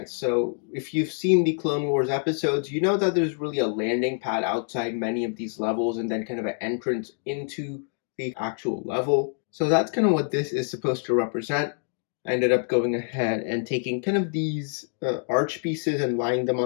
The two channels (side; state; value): right; silent; 61 dB below the other